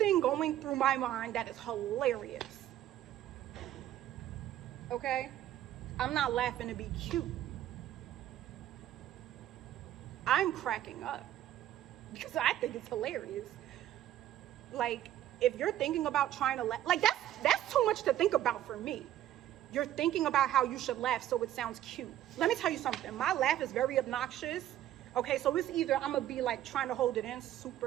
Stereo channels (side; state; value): left; quieter; 12.4 dB